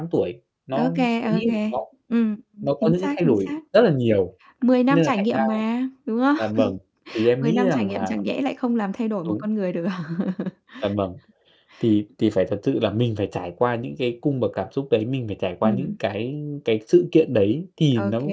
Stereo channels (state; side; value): identical; both; correlation 1.00